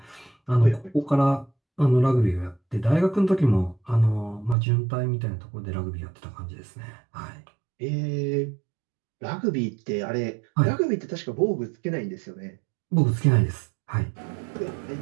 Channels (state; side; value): drops out; left; at 4.5 s